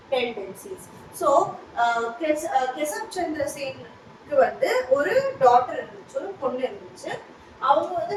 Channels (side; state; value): both; identical; correlation 1.00